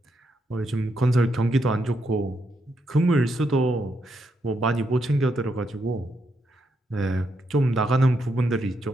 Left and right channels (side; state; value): both; normal; correlation 0.80